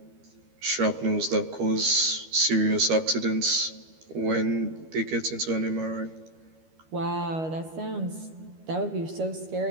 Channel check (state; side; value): late; left; 13 ms